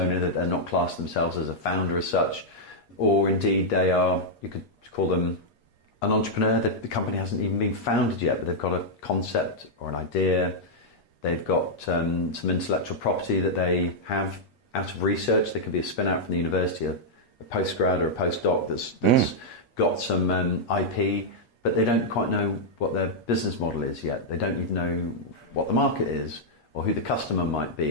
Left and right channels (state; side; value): late; right; 8.3 ms